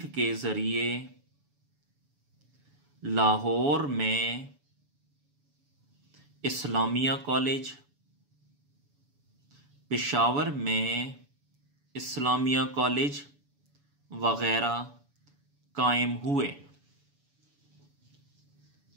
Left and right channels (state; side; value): late; left; 7.0 ms